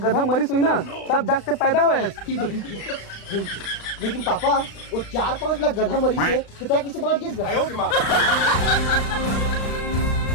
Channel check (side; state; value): right; late; 36 ms